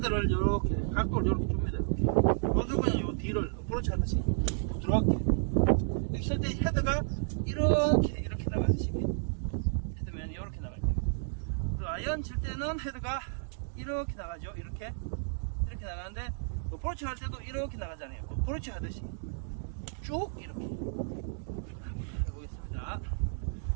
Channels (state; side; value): silent; left; digital silence